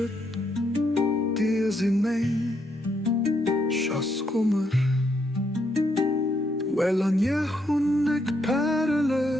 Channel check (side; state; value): both; normal; correlation 0.76